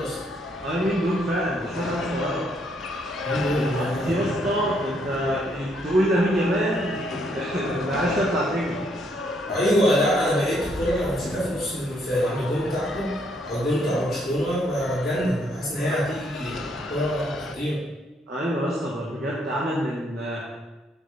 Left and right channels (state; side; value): normal; both; correlation 0.71